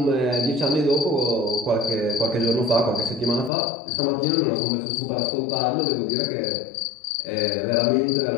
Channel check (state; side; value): drops out; right; at 3.5 s